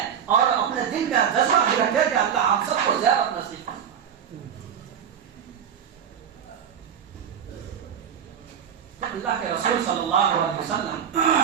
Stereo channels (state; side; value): quieter; left; 8.4 dB